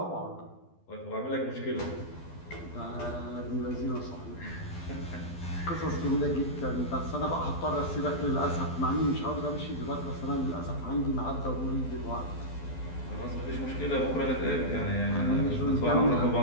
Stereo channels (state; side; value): late; right; 12 ms